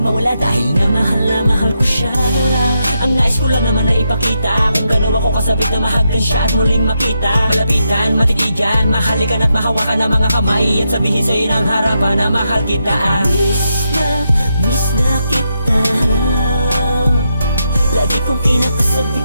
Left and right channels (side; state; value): both; inverted; correlation -0.83